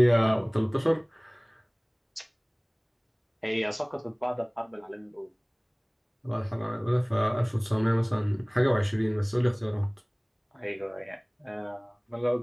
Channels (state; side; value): identical; both; correlation 1.00